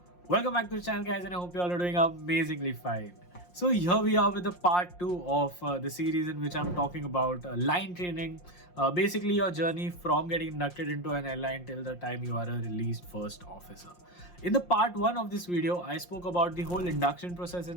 Welcome back to the channel, guys, and I hope you all are doing amazingly fine. So here we are with the part 2 of the series in which I'm talking about line training, basically your journey from getting inducted into an airline till the time you are a released first officer. In the part 1 of this video, I spoke about the whole induction process in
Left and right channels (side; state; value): right; late; 5.6 ms